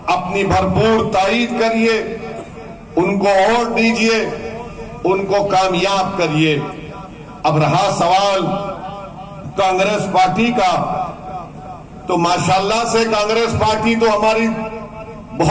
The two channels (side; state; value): both; identical; correlation 1.00